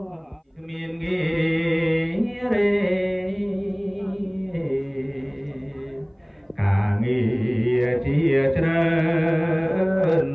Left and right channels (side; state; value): both; identical; correlation 1.00